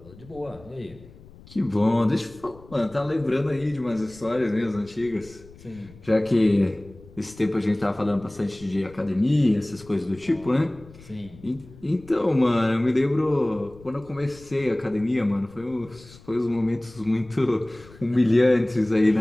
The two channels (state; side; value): noise; left; rumble, 22 dB below the sound